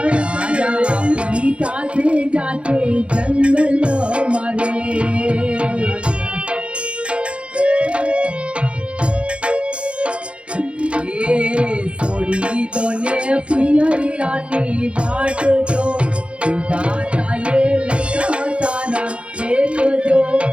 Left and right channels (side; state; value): left; late; 0.059 ms